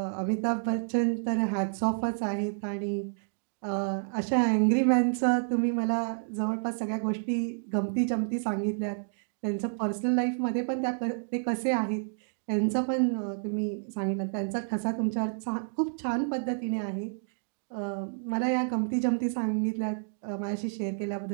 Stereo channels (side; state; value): left; silent; digital silence